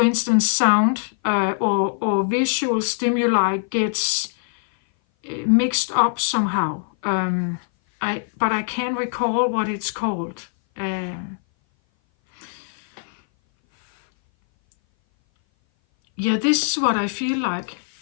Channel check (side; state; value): right; silent; 59 dB below the other